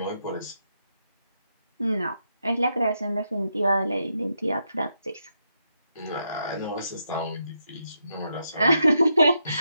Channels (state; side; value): inverted; both; correlation -0.81